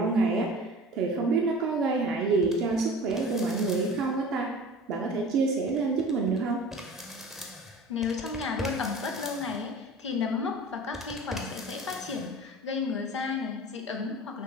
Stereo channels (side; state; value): both; normal; correlation 0.40